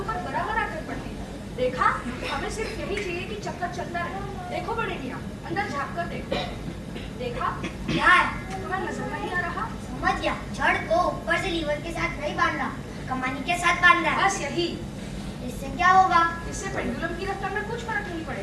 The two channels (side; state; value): both; identical; correlation 1.00